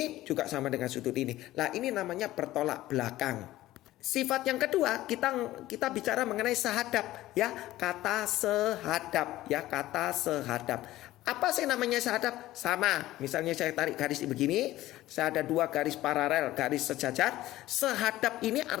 juga sama dengan sudut ini. Lah, ini namanya bertolak belakang. Sifat yang kedua, kita bicara mengenai sehadap ya, kata sehadap ya, kata sehadap. Apa sih namanya sehadap? Sama. Misalnya saya tarik garis begini, saya ada dua garis paralel, garis sejajar. Sehadap ini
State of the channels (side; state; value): right; quieter; 15.8 dB